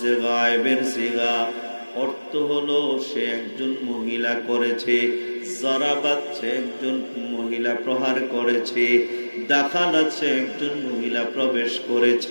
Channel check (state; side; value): inverted; both; correlation -1.00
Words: গায়েবের সিগা, অর্থ হলো সে একজন মহিলা করেছে। জরাবাত, সে একজন মহিলা প্রহার করেছে। দাখালাত, সে একজন মহিলা প্রবেশ